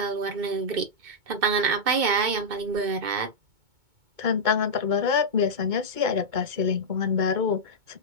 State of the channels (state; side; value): late; left; 2.2 ms